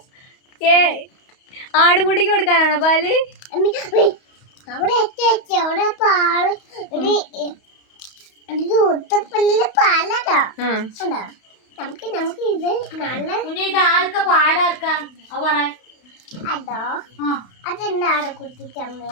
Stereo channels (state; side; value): late; right; 31 ms